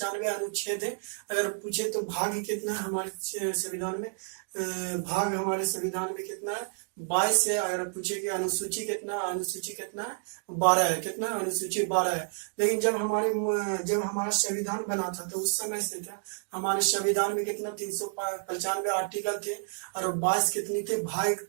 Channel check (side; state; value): left; silent; digital silence